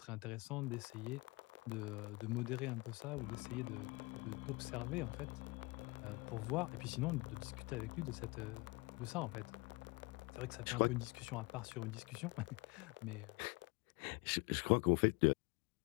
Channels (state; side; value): quieter; right; 25.7 dB